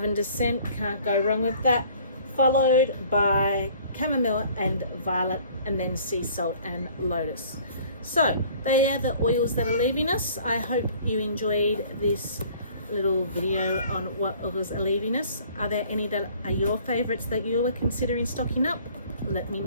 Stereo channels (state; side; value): inverted; both; correlation -0.53